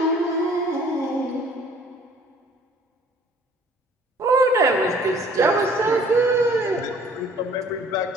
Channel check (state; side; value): normal; both; correlation 0.55